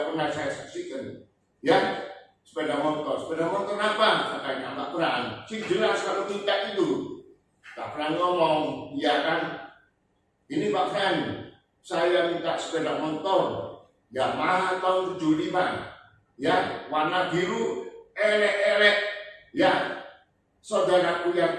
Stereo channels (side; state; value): both; identical; correlation 1.00